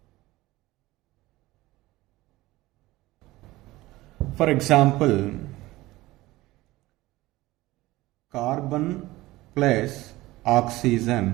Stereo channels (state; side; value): quieter; left; 18.5 dB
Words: For example, carbon plus